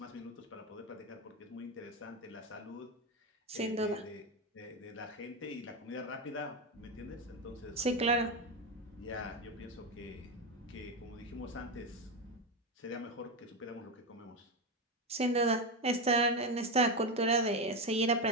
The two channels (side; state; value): both; normal; correlation 0.12